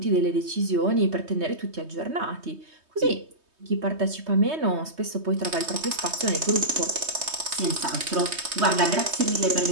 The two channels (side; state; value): left; late; 3.2 ms